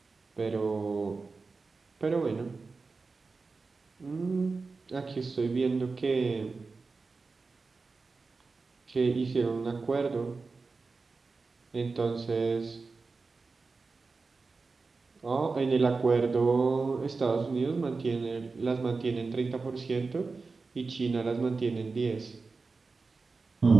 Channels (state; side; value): quieter; left; 4.2 dB